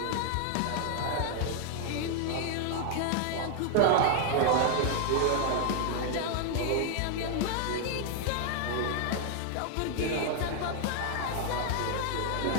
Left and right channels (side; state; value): both; different; correlation 0.00